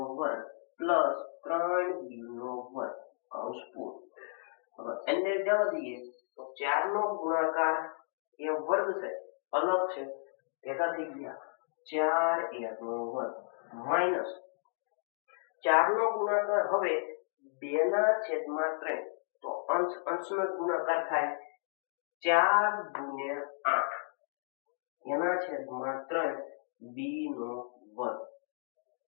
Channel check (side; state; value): right; silent; digital silence